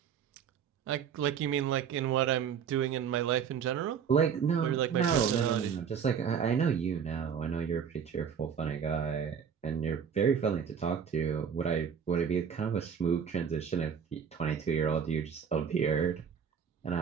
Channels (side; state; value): left; quieter; 7.4 dB